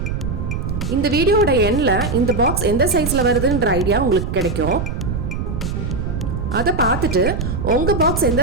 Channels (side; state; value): right; noise; rumble, 3 dB below the sound